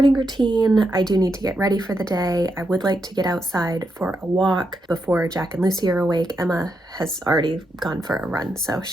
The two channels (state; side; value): normal; both; correlation 0.83